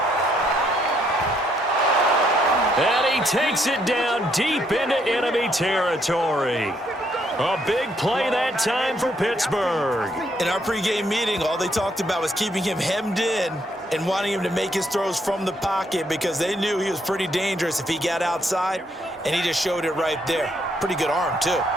And he takes it down deep into enemy territory. A big play that time for Pittsburgh. In our pregame meeting, all they talked about was keeping him hemmed in and wanting him to make his throws from the pocket because they knew he was pretty dangerous if he got outside, and he just showed it right there. Pretty good arm, too.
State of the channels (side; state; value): both; normal; correlation 0.72